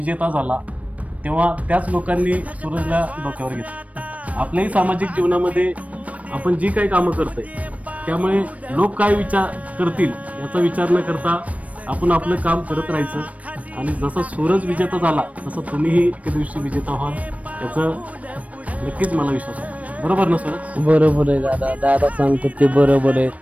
झाला तेव्हा त्याच लोकांनी सूरजला डोक्यावर घेतलं. आपल्याही सामाजिक जीवनामध्ये आपण जी काही कामं करतोय त्यामुळे लोक काय विचार करतील याचा विचार न करता आपण आपलं काम करत राहायचं. आणि जसा सूरज विजेता झाला तसं तुम्हीही एके दिवशी विजेता व्हाल याचं नक्कीच मला विश्वास आहे. बरोबर ना सूरज? बरोबर आहे दादा. दादा सांगतो ते बरोबर आहे.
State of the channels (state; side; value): late; left; 0.067 ms